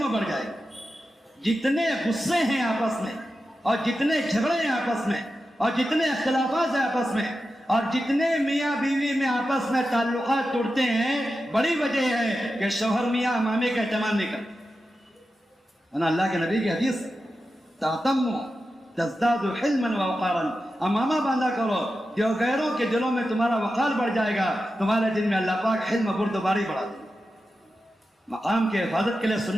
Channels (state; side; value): normal; both; correlation 0.91